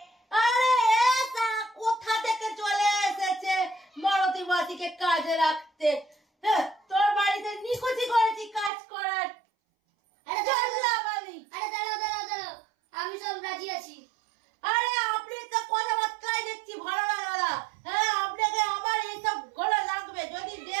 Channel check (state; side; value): drops out; left; at 8.7 s